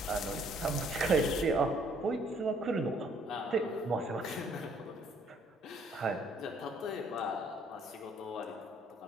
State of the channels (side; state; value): both; normal; correlation 0.63